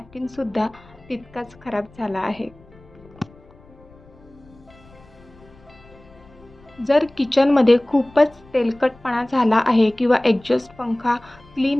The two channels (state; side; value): noise; left; rumble, 26 dB below the sound